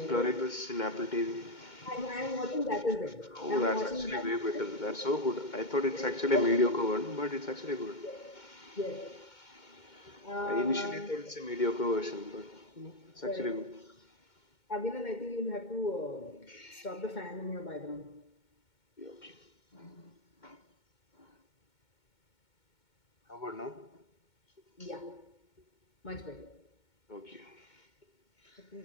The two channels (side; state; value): right; late; 2.2 ms